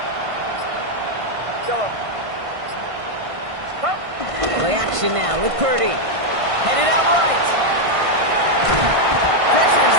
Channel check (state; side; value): late; left; 1.5 ms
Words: Yellow. Up. Play action now with Purdy. Headed out right. Pressure's